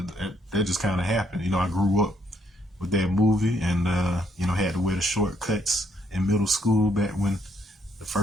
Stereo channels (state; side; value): normal; both; correlation 0.71